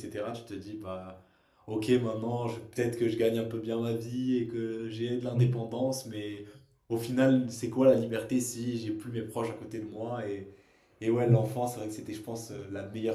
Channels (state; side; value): identical; both; correlation 1.00